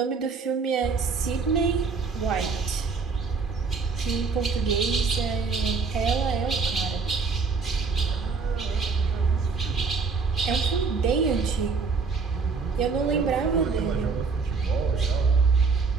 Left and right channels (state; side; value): quieter; left; 4.9 dB